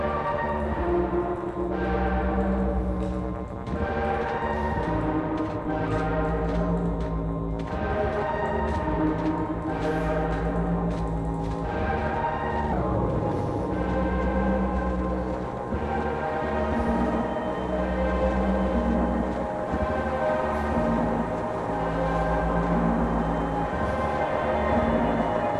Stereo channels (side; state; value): both; identical; correlation 1.00